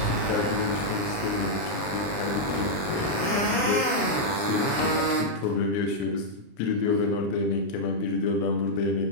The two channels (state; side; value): late; right; 30 ms